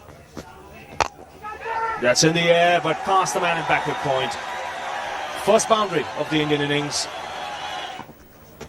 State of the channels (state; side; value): identical; both; correlation 1.00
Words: That's in the air, but past the man in backward point. First boundary of the Indian innings.